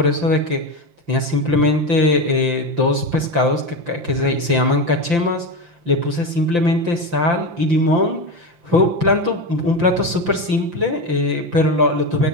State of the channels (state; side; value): late; left; 5.8 ms